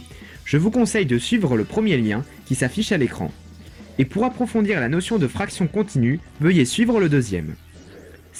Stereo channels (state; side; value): identical; both; correlation 1.00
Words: je vous conseille de suivre le premier lien qui s'affiche à l'écran. Et pour approfondir la notion de fraction continue, veuillez suivre le deuxième.